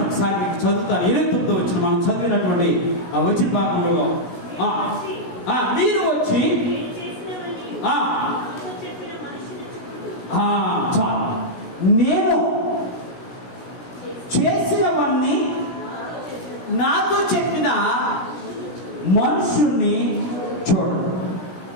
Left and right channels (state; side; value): late; right; 17 ms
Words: ఒకసారి మీకు చదువుతాను. 29వ వచనం మనం చదివినటువంటి ఆ వచన భాగంలో మీరు వచ్చి చాలు నేను చేసినవన్నీ నాతో చెప్పిన మనుషుణ్ణి చూడండి.